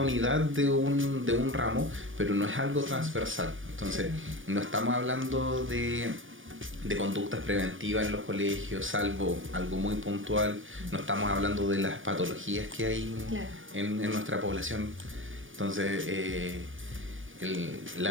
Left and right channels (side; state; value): left; late; 0.57 ms